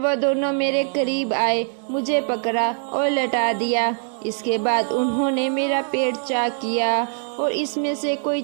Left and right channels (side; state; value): left; silent; digital silence